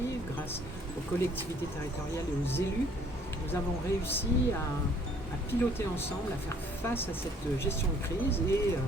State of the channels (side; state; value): both; normal; correlation 0.59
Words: grâce aux collectivités territoriales et aux élus, nous avons réussi à piloter ensemble, à faire face à cette gestion de crise, et